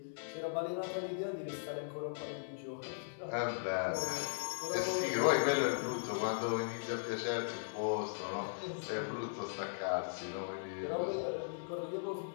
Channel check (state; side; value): silent; right; 52 dB below the other